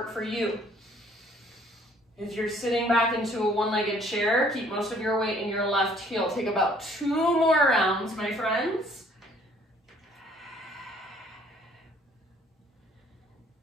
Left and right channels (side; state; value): both; normal; correlation 0.59